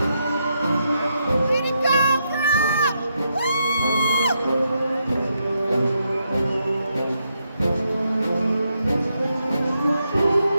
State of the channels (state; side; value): inverted; both; correlation -0.81